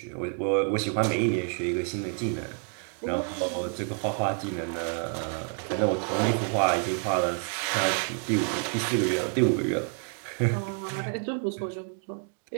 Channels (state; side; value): quieter; left; 39.9 dB